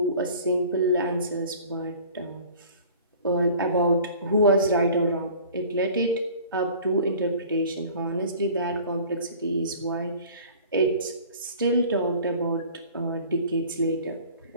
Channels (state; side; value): inverted; both; correlation -0.46